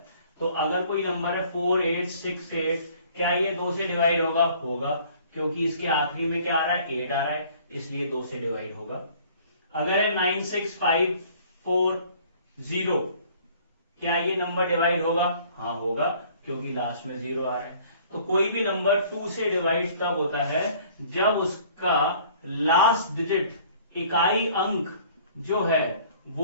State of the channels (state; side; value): inverted; both; correlation -0.54